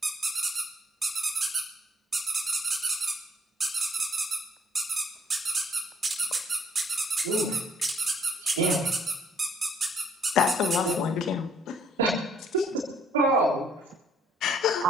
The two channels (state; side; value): normal; both; correlation 0.64